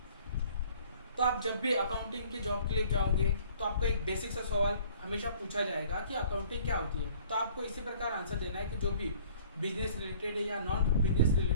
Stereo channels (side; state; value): both; inverted; correlation -0.54